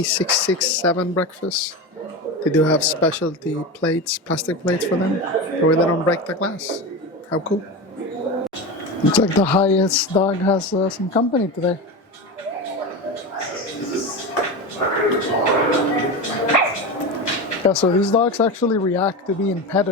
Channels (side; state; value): both; normal; correlation 0.22